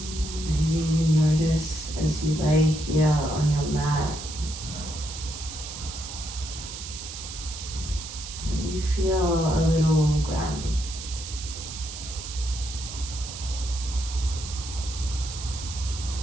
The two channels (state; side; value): noise; right; hiss, 9 dB below the sound